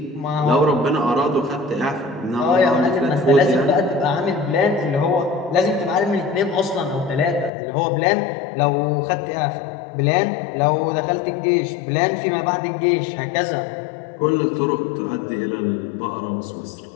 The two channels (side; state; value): right; drops out; at 7.5 s